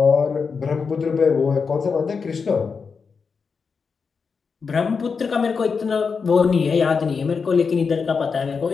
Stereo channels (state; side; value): quieter; right; 5.4 dB